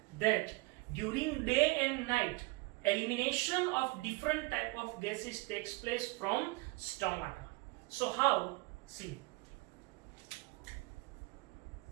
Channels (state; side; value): quieter; left; 24.9 dB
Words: that during day and night elimination of different type of gases takes place from stomata. So how? See,